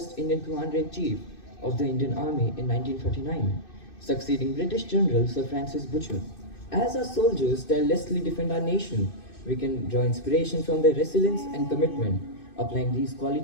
Indian Commander-in-Chief of the Indian Army in 1949, succeeding British General Sir Francis Butcher. As our soldiers tirelessly defend our nation, we can draw inspiration from their resilience and commitment, applying these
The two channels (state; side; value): late; right; 2.6 ms